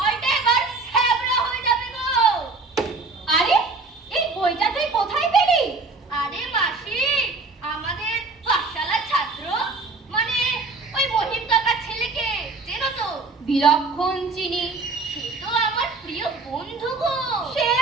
এবার থেবড়া হয়ে যাবে গো। আরে, এই বইটা তুই কোথায় পেলি? আরে মাসি, আমাদের পাঠশালার ছাত্র, মানে ওই মহিম কাকার ছেলেকে চেনো তো? বিলক্ষণ চিনি, সে তো আমার প্রিয় বন্ধু গো।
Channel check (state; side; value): quieter; left; 3.8 dB